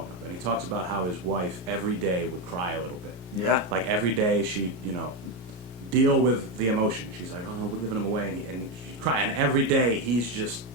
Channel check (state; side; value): late; left; 33 ms